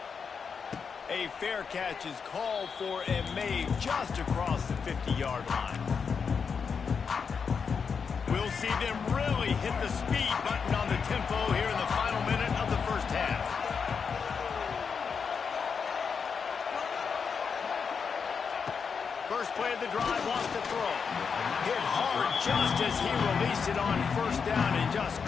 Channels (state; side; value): quieter; right; 6.0 dB